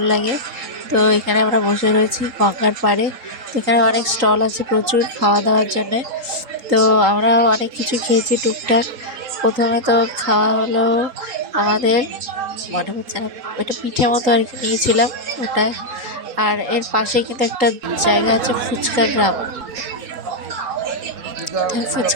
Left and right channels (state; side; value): late; left; 3.8 ms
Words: লাগে। তো এখানে আমরা বসে রয়েছি গঙ্গার পাড়ে। তো এখানে অনেক স্টল আছে প্রচুর খাওয়া দাওয়ার জন্যে। তো আমরা অনেক কিছু খেয়েছি টুকটাক। প্রথমে তো খাওয়া হলো আমাদের, মনে হচ্ছে না, এটা পিঠে মতো আর কি নিয়েছিলাম ওটা। আর এর পাশে কিন্তু একটা জায়গা আছে ফুচকা গ্রাম।